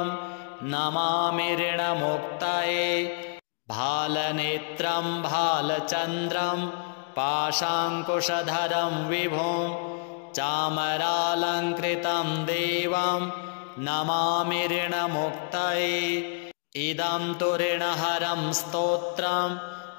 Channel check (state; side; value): quieter; right; 37.9 dB